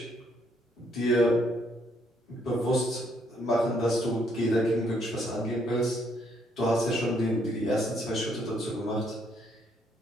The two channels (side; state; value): both; normal; correlation 0.70